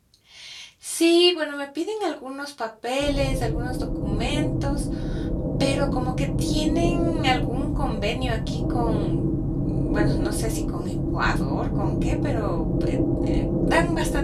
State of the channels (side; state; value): both; identical; correlation 1.00